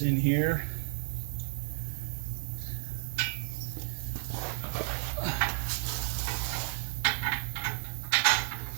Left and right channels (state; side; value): silent; left; 56 dB below the other